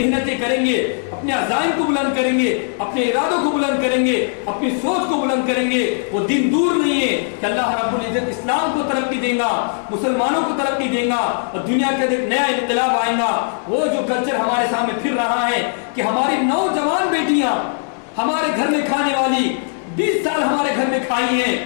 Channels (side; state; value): right; silent; 62 dB below the other